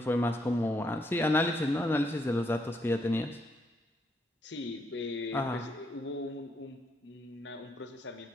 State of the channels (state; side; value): normal; both; correlation 0.76